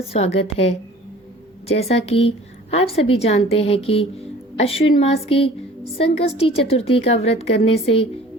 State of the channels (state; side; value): normal; both; correlation 0.47